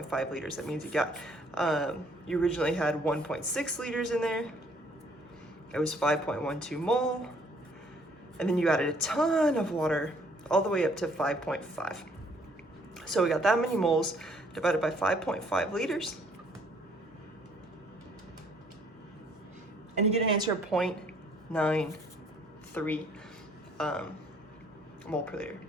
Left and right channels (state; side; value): normal; both; correlation 0.62